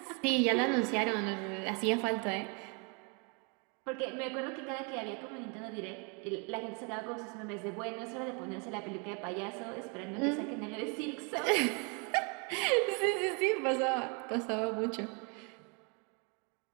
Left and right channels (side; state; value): left; quieter; 34.4 dB